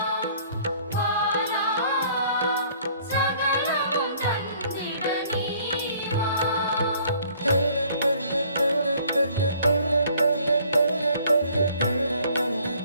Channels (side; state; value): both; inverted; correlation -0.58